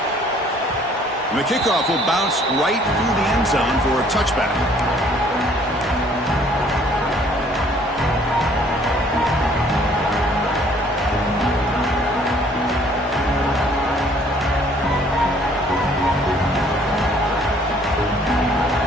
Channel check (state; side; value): normal; both; correlation 0.59